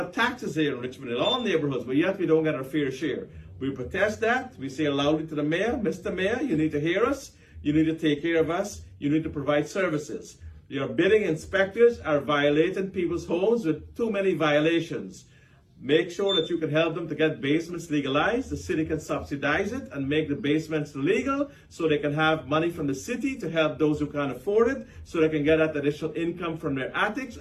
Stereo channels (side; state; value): both; identical; correlation 1.00